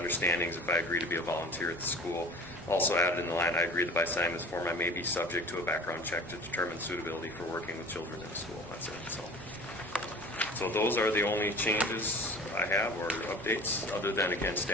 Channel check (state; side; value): normal; both; correlation 0.41